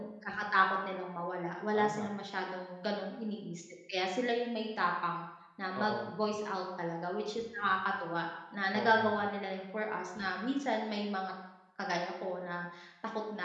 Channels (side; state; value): both; identical; correlation 1.00